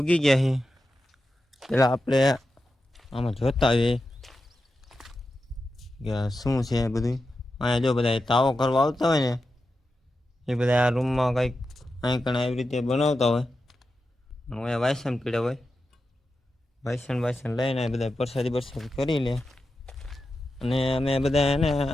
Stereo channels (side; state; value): both; normal; correlation 0.90